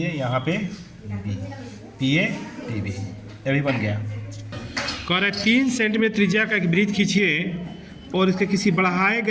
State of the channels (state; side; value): identical; both; correlation 1.00